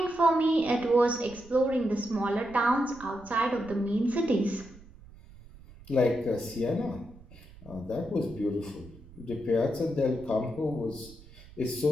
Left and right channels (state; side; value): noise; right; rumble, 20 dB below the sound